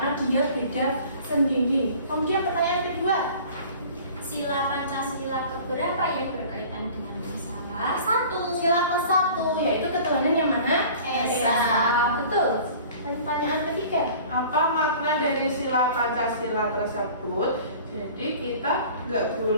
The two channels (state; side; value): inverted; both; correlation -0.45